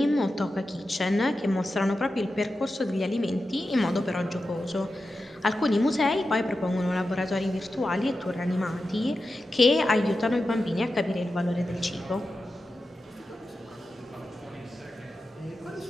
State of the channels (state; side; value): normal; both; correlation 0.91